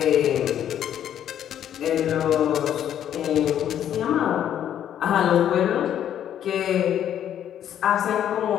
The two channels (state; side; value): quieter; right; 10.3 dB